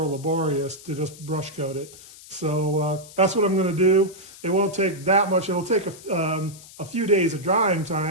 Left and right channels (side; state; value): left; noise; hiss, 19 dB below the sound